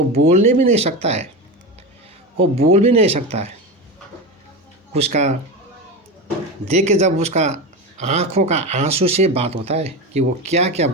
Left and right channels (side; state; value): both; normal; correlation 0.21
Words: बोलने भी नहीं सकता है, वो बोल भी नहीं सकता है। उसका देख के जब उसका आँखों का आंसू से बात होता है कि वो क्या क्या